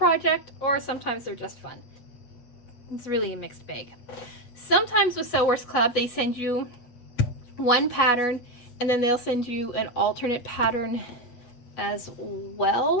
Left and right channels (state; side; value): late; right; 8.2 ms